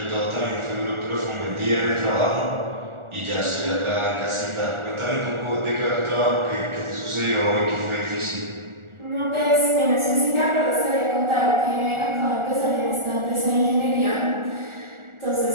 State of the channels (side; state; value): left; late; 1.4 ms